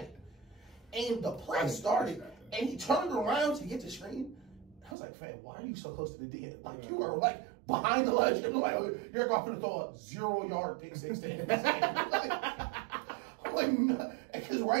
it. And the play started, and he turned around to get the screen. I was like, fam, why are you so close to the D? Like, you are, like, behind the ledge. And, like, you're going to throw a 0-yard pick 6 to him. Because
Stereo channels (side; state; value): left; drops out; at 5.0 s